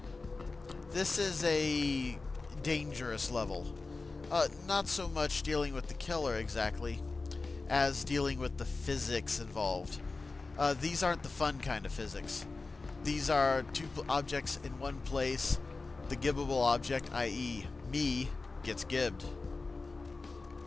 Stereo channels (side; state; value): right; quieter; 3.8 dB